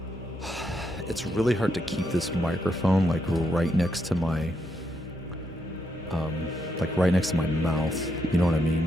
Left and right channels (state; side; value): normal; both; correlation 0.79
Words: keep this microphone like right next to my mouth. You know what I